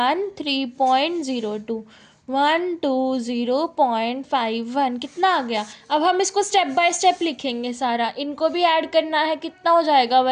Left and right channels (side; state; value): both; identical; correlation 1.00